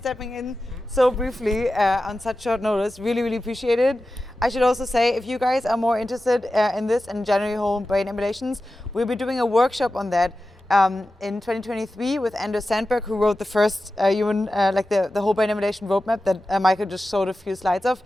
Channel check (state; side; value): normal; both; correlation 0.94